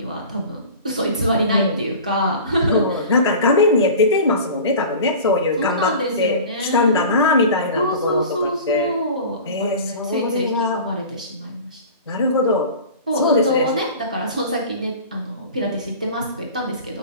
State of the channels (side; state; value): both; inverted; correlation -0.38